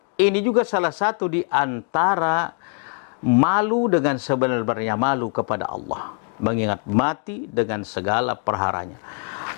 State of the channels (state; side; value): quieter; right; 38.1 dB